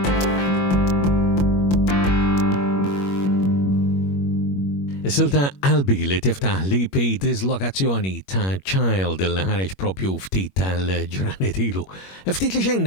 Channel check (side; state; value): right; late; 21 ms